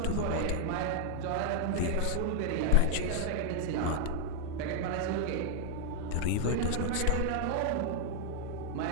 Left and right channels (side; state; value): both; different; correlation 0.00